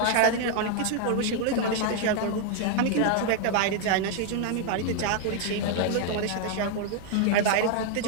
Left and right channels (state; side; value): different; both; correlation 0.00